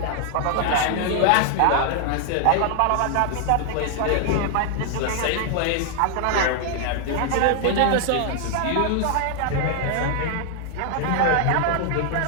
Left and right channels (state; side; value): different; both; correlation 0.00